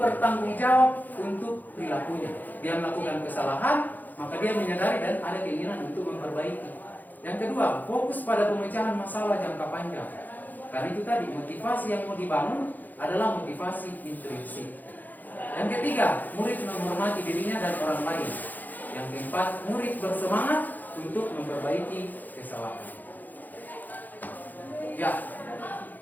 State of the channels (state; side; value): late; right; 0.084 ms